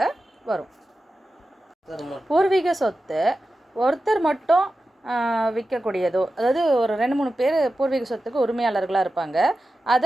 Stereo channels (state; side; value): normal; both; correlation 0.93